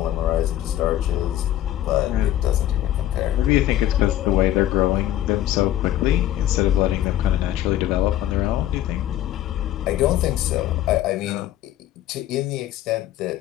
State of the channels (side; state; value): right; quieter; 12.9 dB